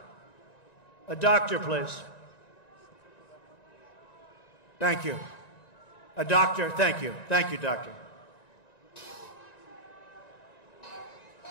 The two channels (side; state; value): right; late; 1.9 ms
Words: A doctor, please. Thank you. A doctor, thank you. Thank you, doctor.